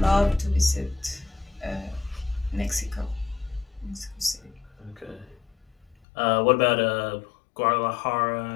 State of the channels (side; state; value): right; drops out; at 6.0 s